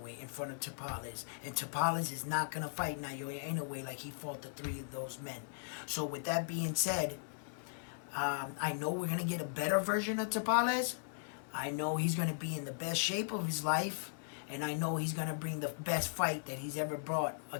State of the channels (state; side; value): silent; right; 53 dB below the other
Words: in front of Tapales. And Tapales is not going to fight Naoya Inoue like he fought the 3 of those men. So with that being said, I know we're going to get a better version of Tapales. I know he's going to be in the best shape of his life. And I know he's going to bring the best fight that he's ever brought